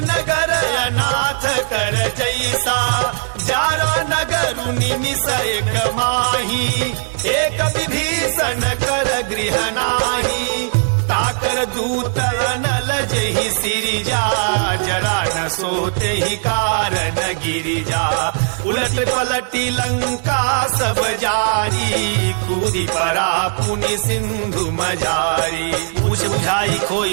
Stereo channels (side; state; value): left; silent; digital silence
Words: नगर अनाथ कर जैसा जारा नगर निमिष एक माही एक विभीषण कर गृह नाही ताकर दूत अनल जही सिरिजा जरा न सोते ही कारण गिरिजा उलट पलटी लंका सब जारी कूदी परा पुनि सिंधु मजारी पूछ बुझाई